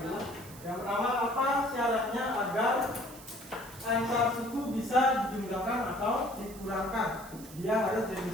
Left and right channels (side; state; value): right; noise; hiss, 17 dB below the sound